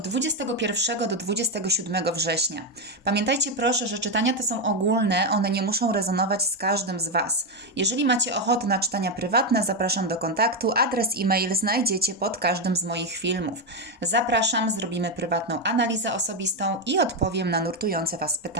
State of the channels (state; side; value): normal; both; correlation 0.07